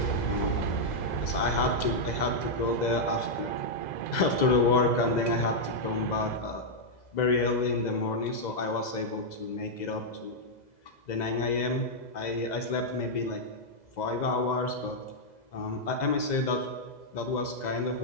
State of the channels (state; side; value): late; right; 2.0 ms